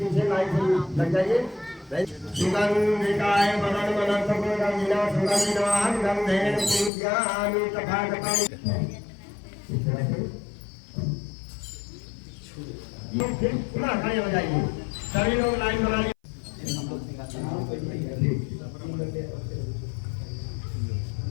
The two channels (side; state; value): right; drops out; at 6.9 s